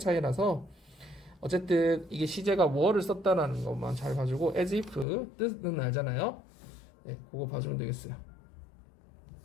어쨌든 이게 시제가 were를 썼다라는 것만 잘 봐주고 as if 뜻은 알잖아요. 네, 그거 봐주면 되겠어요.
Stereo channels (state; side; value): drops out; right; at 5.1 s